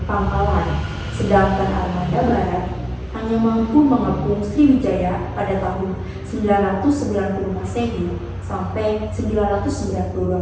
pangkalan, sedangkan armada barat hanya mampu mengepung Sriwijaya pada tahun 990 Masehi sampai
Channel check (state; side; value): identical; both; correlation 1.00